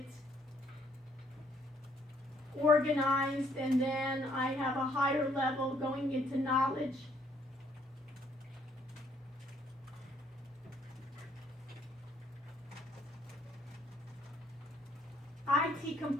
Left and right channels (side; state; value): both; normal; correlation 0.66